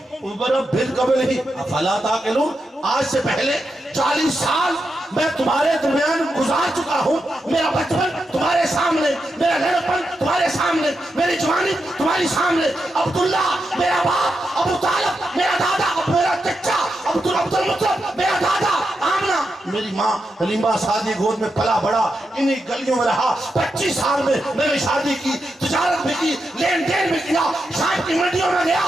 عُمُرًا مِّن قَبْلِهِ أَفَلَا تَعْقِلُونَ. آج سے پہلے 40 سال میں تمہارے درمیان گزار چکا ہوں. میرا بچپن تمہارے سامنے، میرا لڑکپن تمہارے سامنے، میری جوانی تمہاری سامنے. عبداللہ میرا باپ، ابو طالب میرا دادا، میرا چچا عبد المطلب میرا دادا، آمنہ میری ماں، حلیمہ سعدی گود میں پلا بڑا، انہی گلیوں میں رہا. 25 سال میں میں نے شادی کی، تجارت بھی کی، لین دین بھی کیا، شام کی منڈیوں میں گیا،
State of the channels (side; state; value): both; normal; correlation 0.86